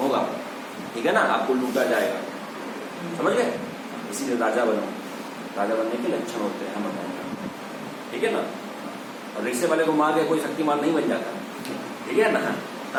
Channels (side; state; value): both; identical; correlation 1.00